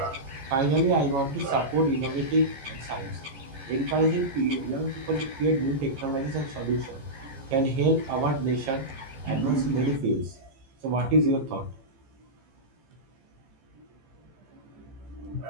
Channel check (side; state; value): left; late; 15 ms